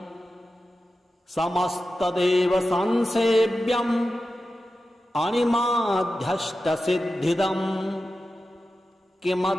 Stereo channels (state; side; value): normal; both; correlation 0.92